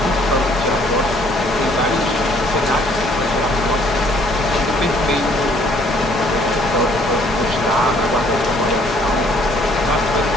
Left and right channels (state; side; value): normal; both; correlation 0.61